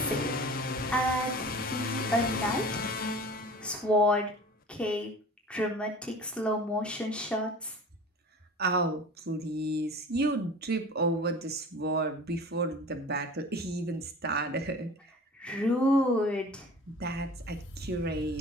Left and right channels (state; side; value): normal; both; correlation 0.40